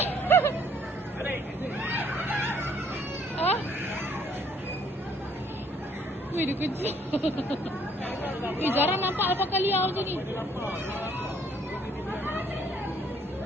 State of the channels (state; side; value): normal; both; correlation 0.63